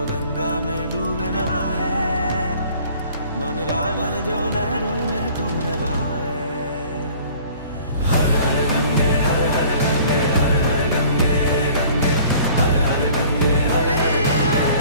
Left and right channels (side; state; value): both; inverted; correlation -0.51